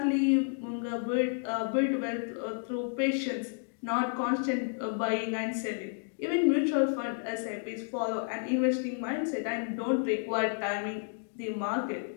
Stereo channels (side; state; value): right; silent; 57 dB below the other